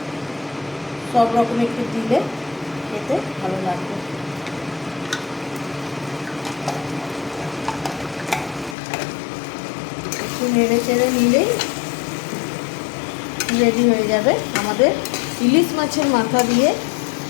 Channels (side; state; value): right; drops out; at 8.8 s